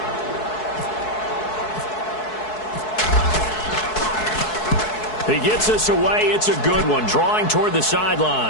He gets us away. It's a good one, drawing toward the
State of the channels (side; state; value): right; late; 4.7 ms